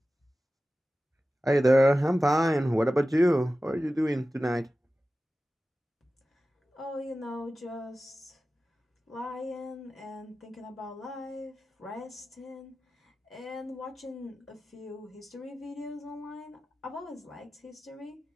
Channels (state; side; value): normal; both; correlation 0.95